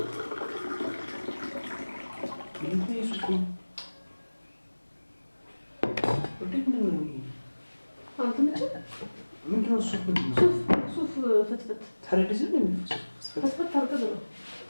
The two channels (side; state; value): both; inverted; correlation -1.00